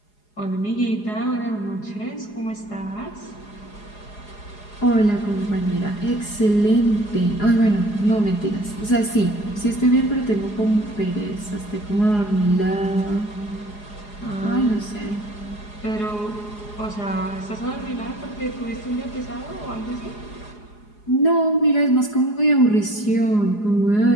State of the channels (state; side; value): late; right; 4.8 ms